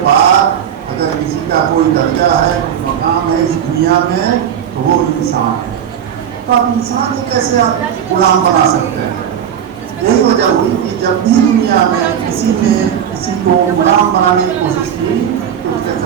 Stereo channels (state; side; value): quieter; left; 9.1 dB